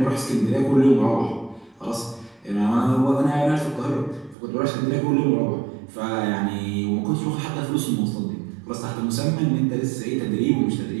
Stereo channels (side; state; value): left; drops out; at 4.4 s